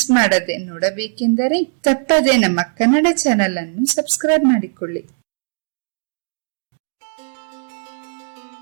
ಮಾಡದೆ ನೋಡಬೇಕೆಂದರೆ ತಪ್ಪದೆ ನಮ್ಮ ಕನ್ನಡ ಚಾನೆಲ್ ಅನ್ನು ಸಬ್ಸ್ಕ್ರೈಬ್ ಮಾಡಿಕೊಳ್ಳಿ.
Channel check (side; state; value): left; silent; digital silence